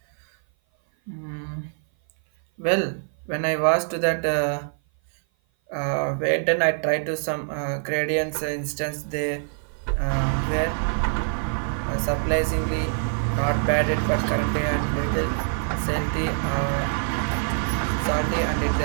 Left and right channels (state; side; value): silent; left; 56 dB below the other